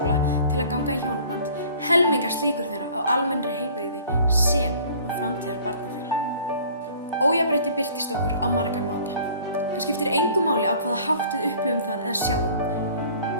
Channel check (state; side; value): inverted; both; correlation -0.50